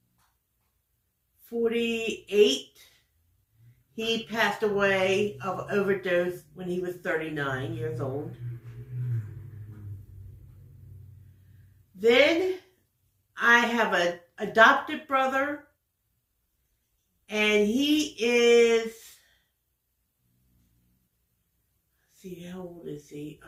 48. He passed away of overdose when he was 39 years old. Then I have an adopted brother, and he is, let's see, how old is he?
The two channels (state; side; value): identical; both; correlation 1.00